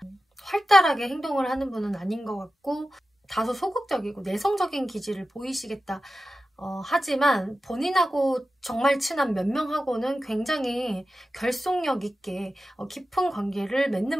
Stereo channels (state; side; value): normal; both; correlation 0.93